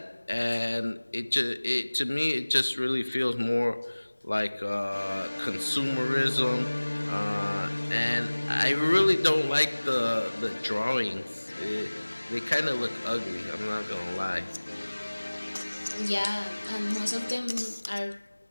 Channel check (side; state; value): both; inverted; correlation -1.00